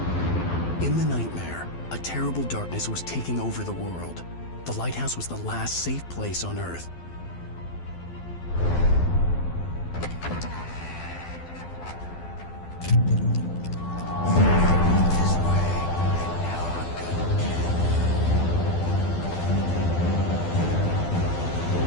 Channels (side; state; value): right; late; 12 ms